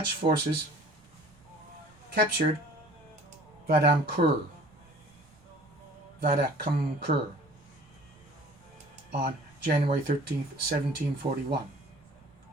forces captured Vadamkur on January 13, 1741.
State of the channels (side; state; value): right; noise; rumble, 29 dB below the sound